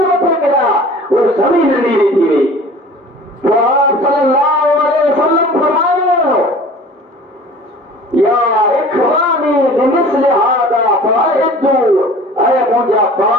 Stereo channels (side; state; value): both; normal; correlation 0.44